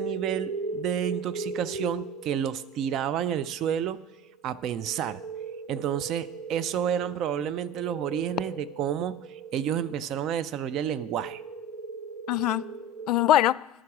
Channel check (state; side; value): normal; both; correlation 0.32